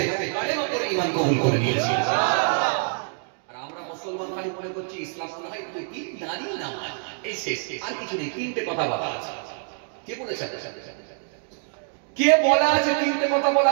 কালেমা পড়ে ঈমান কবুল করে নিয়েছে। আর আমরা মুসলমান খালি মনে করছি ইসলাম মনে হয় কি নারী নামাজ, এই শেষ, আর কিছু নেই। তিনটে কথা বলা আছে। কে বলেছে? কে বলা আছে? তিনটে কথা বলা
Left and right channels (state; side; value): silent; left; 61 dB below the other